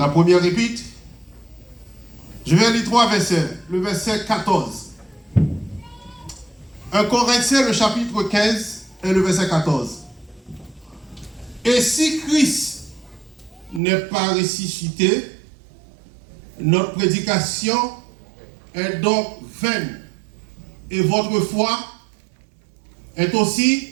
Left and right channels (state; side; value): drops out; left; at 13.8 s